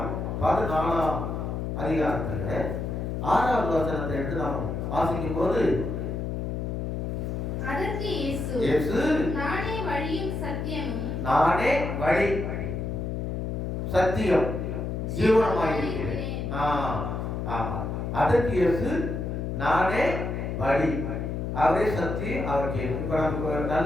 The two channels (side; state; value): left; noise; hum, 3 dB below the sound